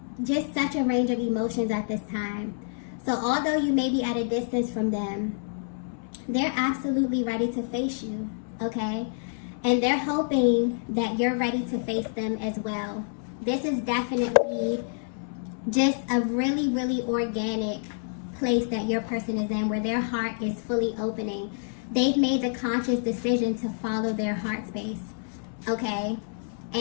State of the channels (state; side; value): silent; right; 60 dB below the other